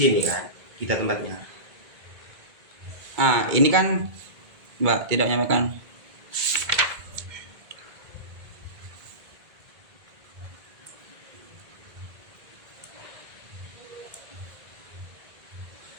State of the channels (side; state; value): left; late; 2.0 ms